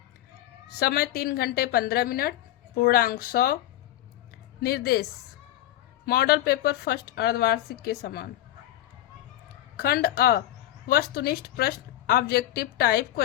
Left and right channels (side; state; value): right; quieter; 13.7 dB